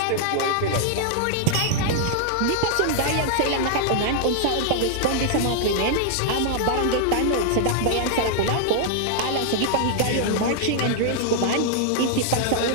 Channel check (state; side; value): different; both; correlation -0.01